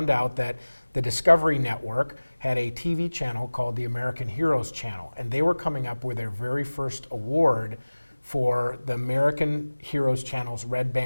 out that the Discovery Network had a TV channel called the American Heroes Channel, and they were coming up with their very first award for the American Heroes Channel's Red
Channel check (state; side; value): inverted; both; correlation -1.00